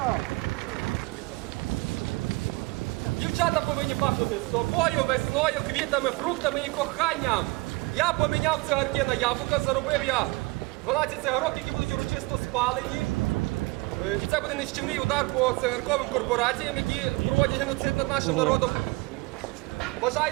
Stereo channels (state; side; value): quieter; left; 24.4 dB